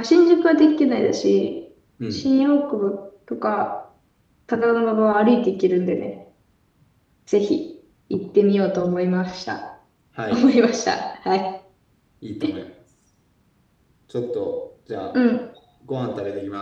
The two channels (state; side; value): identical; both; correlation 1.00